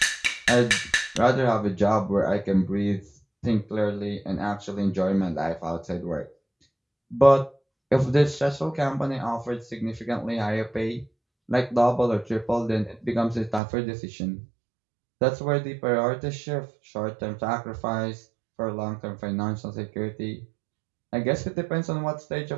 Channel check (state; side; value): drops out; left; at 13.6 s